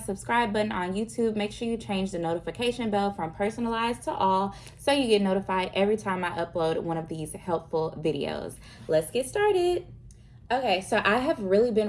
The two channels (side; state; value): both; identical; correlation 1.00